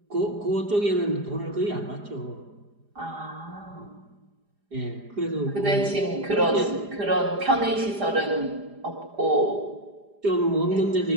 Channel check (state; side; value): late; left; 4.9 ms